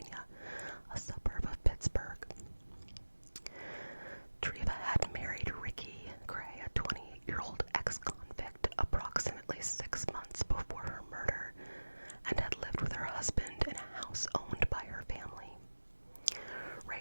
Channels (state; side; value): inverted; both; correlation -1.00